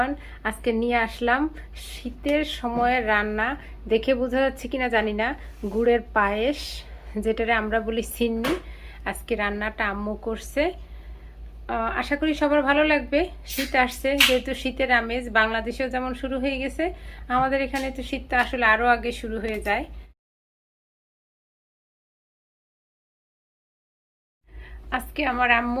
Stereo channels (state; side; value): identical; both; correlation 1.00